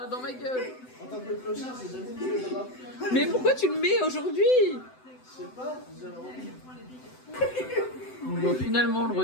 dans ma gueule. en tant que clochard, j'ai jamais mis les draps. Mais pourquoi tu le mets aujourd'hui? Je sais pas, j'avais envie. Bon, finalement, on le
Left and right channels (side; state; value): right; late; 7.9 ms